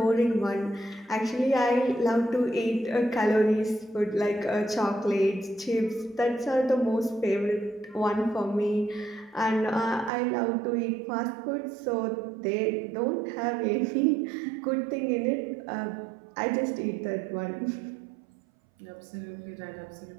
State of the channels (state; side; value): drops out; left; at 10.1 s